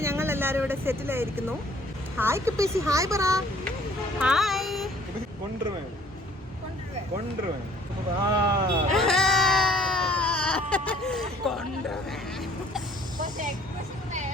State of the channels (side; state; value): both; normal; correlation 0.57